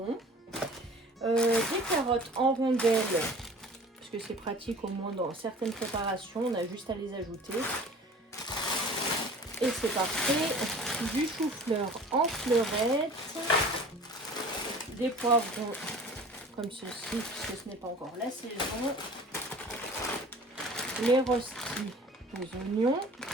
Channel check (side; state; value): both; normal; correlation 0.45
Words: des carottes en rondelles parce que c'est pratique au moins dans certaines préparations, on a juste à les ajouter. Et c'est parfait, du chou-fleur en fleurettes, des poivrons comme ceci puisque ce n'est pas encore la saison, les rostis aux oignons.